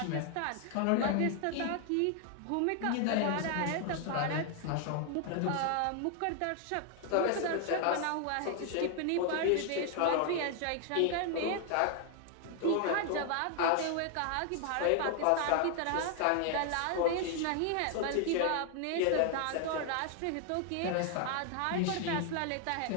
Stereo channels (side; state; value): both; different; correlation 0.00